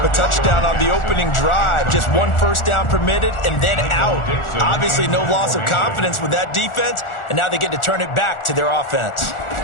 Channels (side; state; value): right; late; 1.4 ms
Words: a touchdown on the opening drive. Just 1 first down permitted and then out. Obviously no loss of confidence with that defense, and now they get to turn it back to their offense.